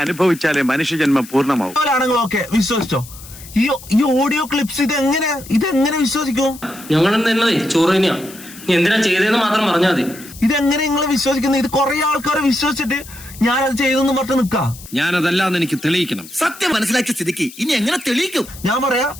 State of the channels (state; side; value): noise; left; hiss, 17 dB below the sound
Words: അനുഭവിച്ചാലേ മനുഷ്യജന്മം പൂർണ്ണമാവും. ആണെങ്കിൽ ഓക്കെ വിശ്വസിച്ചോ. ഈ ഓഡിയോ ക്ലിപ്സ് ഇതെങ്ങനെ വിശ്വസിക്കും? ഞങ്ങൾ ചോറ് തന്നെയാ, എന്തിനാ ചെയ്തതെന്ന് മാത്രം പറഞ്ഞാൽ മതി. ഇതെങ്ങനെ നിങ്ങൾ വിശ്വസിക്കുന്നത്? ഇത് കുറെ ആൾക്കാരെ വിശ്വസിച്ചിട്ട് ഞാനത് ചെയ്തെന്ന് പറഞ്ഞ് നിക്കാം. ഞാനതല്ലാന്ന് എനിക്ക് തെളിയിക്കണം. സത്യം മനസ്സിലാക്കിയ സ്ഥിതിക്ക് ഇനി എങ്ങനെ തെളിയിക്കും? ഞാൻ പറയാ